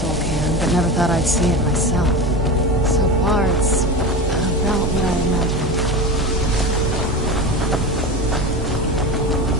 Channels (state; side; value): normal; both; correlation 0.26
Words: cairn, but never thought I'd see it myself. So far, it's about what I imagined.